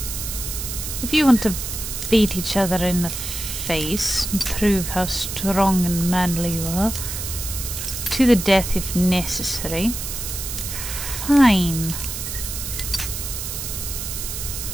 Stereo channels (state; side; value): noise; right; hiss, 6 dB below the sound